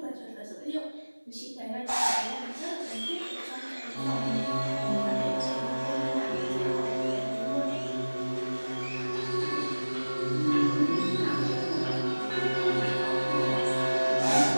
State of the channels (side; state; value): both; inverted; correlation -1.00